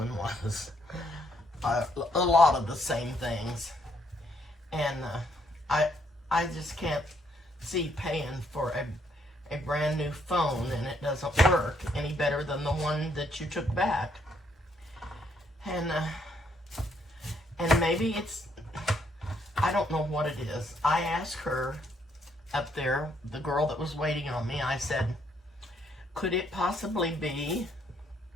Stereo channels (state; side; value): normal; both; correlation 0.71